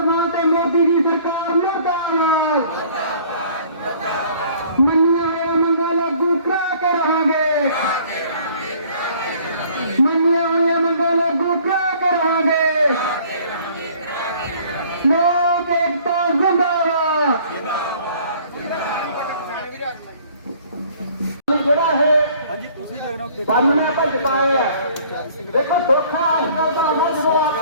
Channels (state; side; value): inverted; both; correlation -0.55